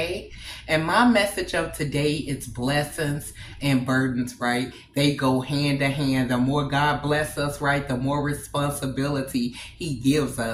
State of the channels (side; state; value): both; identical; correlation 1.00